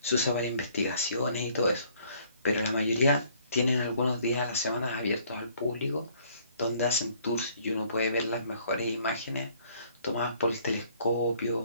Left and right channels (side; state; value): both; inverted; correlation -0.61